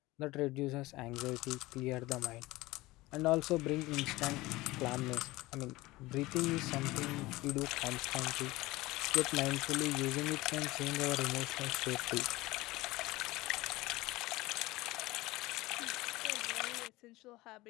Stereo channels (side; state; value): right; quieter; 19.7 dB